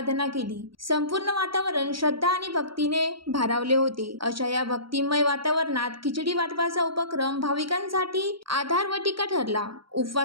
केली. संपूर्ण वातावरण श्रद्धा आणि भक्तीने भारावले होते. अशा या भक्तिमय वातावरणात खिचडी वाटपाचा उपक्रम भाविकांसाठी आधार व टीका ठरला.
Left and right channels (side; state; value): left; late; 0.74 ms